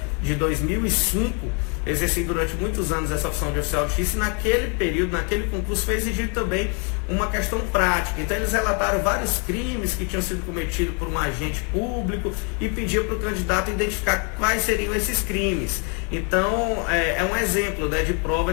de 2005, exerci durante muitos anos essa opção de oficial de justiça, e naquele período, naquele concurso, foi exigido também uma questão prática. Então eles relataram vários crimes que tinham sido cometidos por um agente público e pediam para o candidato identificar quais seriam esses crimes. Então é um exemplo, né, de prova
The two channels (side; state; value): right; quieter; 36.9 dB